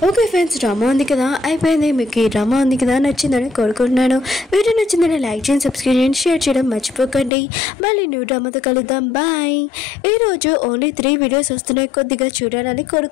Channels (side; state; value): right; drops out; at 7.3 s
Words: ఓకే ఫ్రెండ్స్, డ్రామా ఉంది కదా అయిపోయింది. మీకు ఈ డ్రామా ఉంది కదా నచ్చిందని కోరుకుంటున్నాను. వీడియో నచ్చిందని లైక్ చేయండి, సబ్స్క్రైబ్ చేయండి, షేర్ చేయడం మర్చిపోకండి. మళ్ళీ న్యూ డ్రామాతో కలుద్దాం. బాయ్. ఈరోజు ఓన్లీ 3 వీడియోస్ వస్తున్నాయి, కొద్దిగా చూడాలని